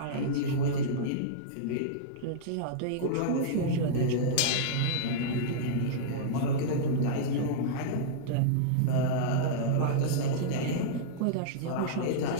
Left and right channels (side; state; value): both; different; correlation -0.02